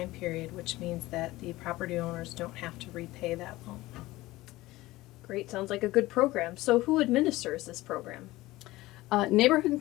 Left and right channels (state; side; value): quieter; right; 18.4 dB